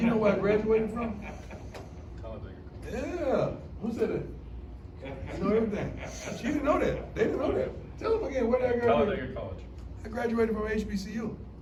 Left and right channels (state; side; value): identical; both; correlation 1.00